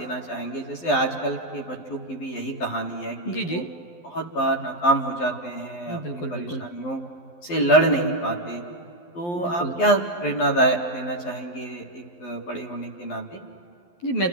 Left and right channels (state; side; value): late; right; 12 ms